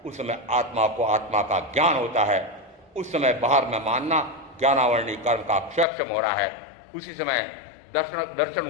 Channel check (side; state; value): right; drops out; at 5.9 s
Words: उस समय आत्मा को आत्मा का ज्ञान होता है। उस समय बाहर में मानना ज्ञानावरणी कर्म का क्षयक्षम हो रहा है। उसी समय